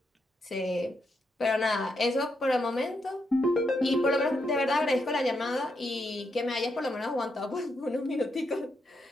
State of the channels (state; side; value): normal; both; correlation 0.81